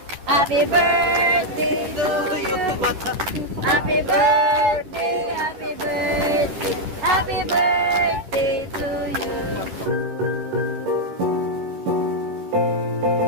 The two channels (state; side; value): late; left; 10 ms